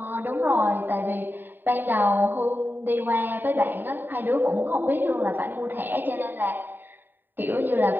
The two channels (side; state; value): left; late; 0.093 ms